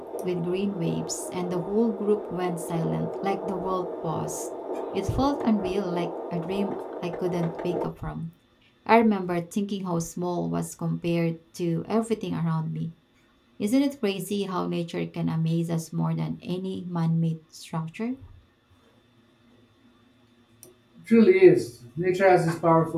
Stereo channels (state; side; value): identical; both; correlation 1.00